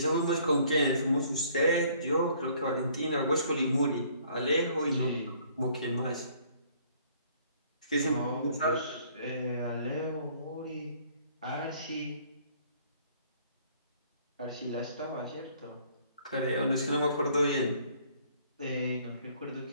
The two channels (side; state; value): both; inverted; correlation -0.60